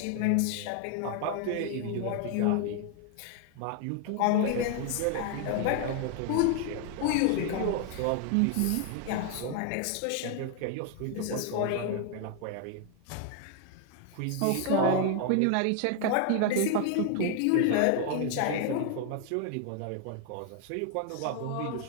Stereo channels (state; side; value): different; both; correlation 0.01